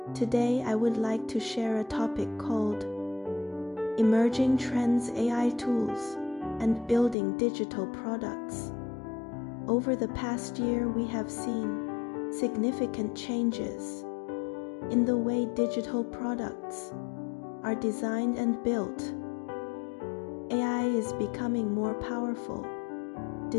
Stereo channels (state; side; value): drops out; right; at 7.2 s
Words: Today I would like to share a topic called Emerging Trends, AI Tools, and Building Digital Products. Over the past year we have seen significant changes in the way digital products are designed and built. AI is becoming more powerful.